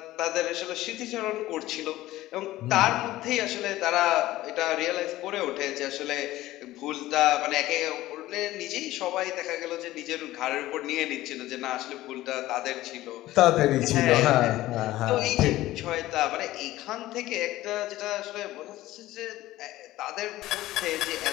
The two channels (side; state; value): right; quieter; 16.1 dB